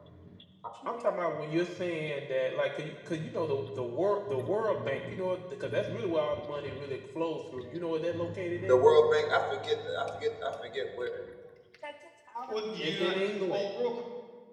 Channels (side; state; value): both; identical; correlation 1.00